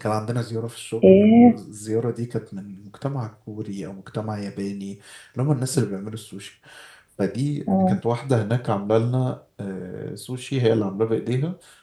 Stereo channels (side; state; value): both; identical; correlation 1.00